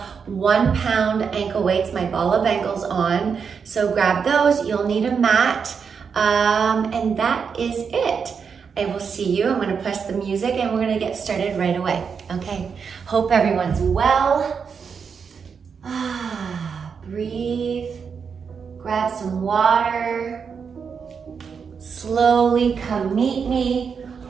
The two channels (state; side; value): quieter; left; 6.2 dB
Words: 1 pound ankle weights, my ball of ankles on, so grab those. You'll need a mat. And that is it. I will see you. I'm going to press the music and we're going to get started right away. Okay. Hope everyone's well. Breathe. Grab some water. Slowly come meet me